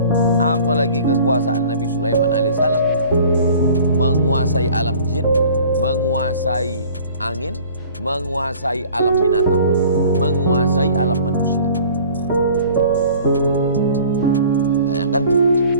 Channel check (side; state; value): both; inverted; correlation -0.48